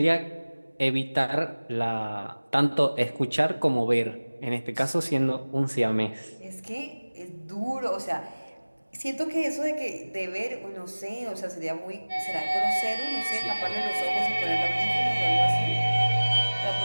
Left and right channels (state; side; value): inverted; both; correlation -1.00